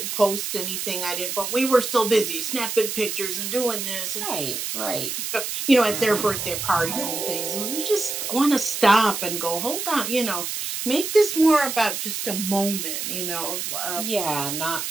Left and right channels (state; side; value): noise; right; hiss, 4 dB below the sound